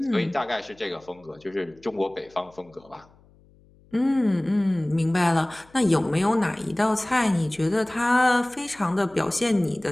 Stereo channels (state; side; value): noise; left; hum, 29 dB below the sound